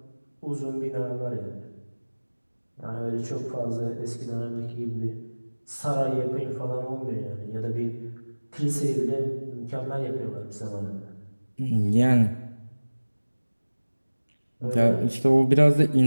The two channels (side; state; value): both; inverted; correlation -1.00